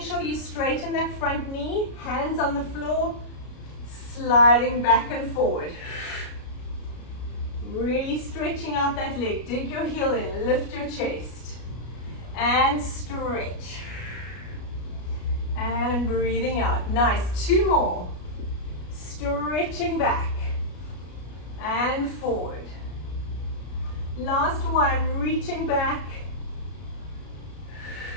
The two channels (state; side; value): late; right; 33 ms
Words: sure you straighten that front knee, hands on the floor, sliding back and forward. Really stretching out that leg. Dig your heel in, lift your chest, and stretch. And breathing out. Nice. Two more. Stretching back and forward. Last one. Reaching back.